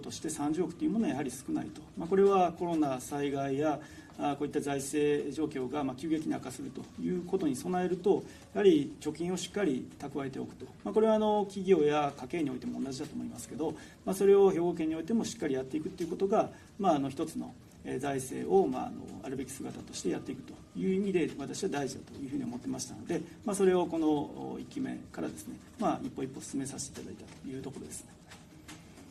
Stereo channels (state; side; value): identical; both; correlation 1.00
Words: として30億というものはやはり少ないと、これはコロナ災害やこういった財政状況が急激に悪化するということに備えると、やはり貯金をしっかり蓄えておくと、これは企業や家計においても同じだと思いますけど、それを兵庫県においてもしっかりやっていくということが、一つの財政をあるべき姿としてやっていくという意味で私は大事だというふうに思ってましたので、それをこの1期目からですね、一歩一歩進めさせていただいたというところです。